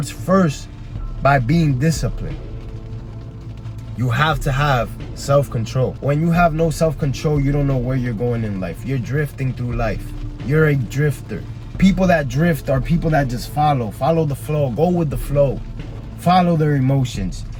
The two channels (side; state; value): both; identical; correlation 1.00